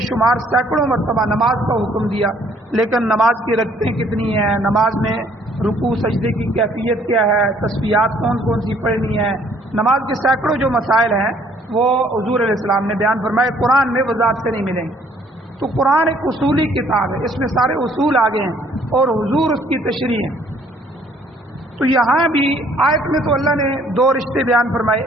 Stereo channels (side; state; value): both; normal; correlation 0.61